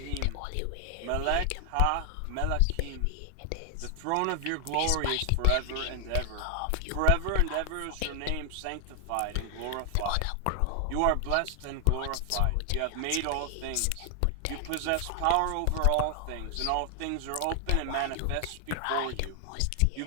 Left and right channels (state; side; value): different; both; correlation 0.00